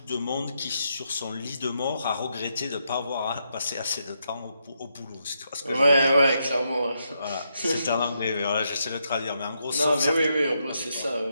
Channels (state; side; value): inverted; both; correlation -0.80